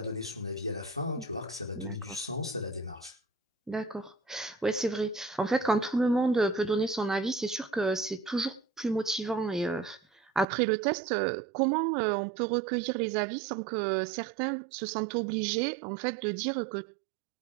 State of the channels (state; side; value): drops out; left; at 10.5 s